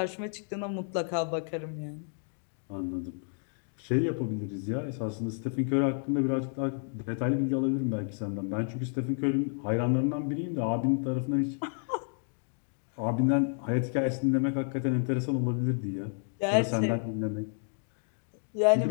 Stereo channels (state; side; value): silent; right; 57 dB below the other